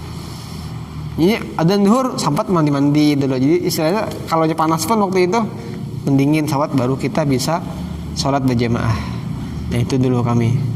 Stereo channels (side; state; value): both; identical; correlation 1.00